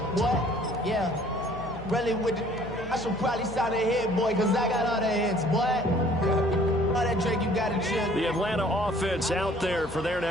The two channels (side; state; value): left; noise; hum, 15 dB below the sound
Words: what? Yeah, really with the, I should probably sign a hit, boy, because I got all the hits, boy. All that Drake, you got to chill. The Atlanta offense out there for their